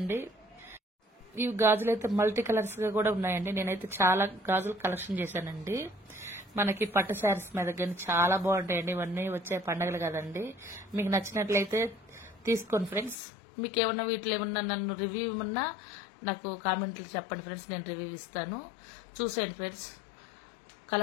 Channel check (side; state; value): right; drops out; at 13.2 s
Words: ఇవి గాజులు అయితే మల్టీ కలర్స్ గా కూడా ఉన్నాయండి. నేనైతే చాలా గాజులు కలెక్షన్ చేశానండి. మనకి పట్టు శారీస్ మీద కానీ చాలా బాగుంటాయండి. ఇవన్నీ వచ్చే పండుగలు కదండి. మీకు నచ్చినట్లయితే తీసుకోండి ఫ్రెండ్స్. మీకు ఏమన్నా వీటిలో ఏమన్నా నన్ను రివ్యూ ఏమన్నా నాకు కామెంట్లు చెప్పండి ఫ్రెండ్స్, నేను రివ్యూ ఇస్తాను. చూసేయండి ఫ్రెండ్స్,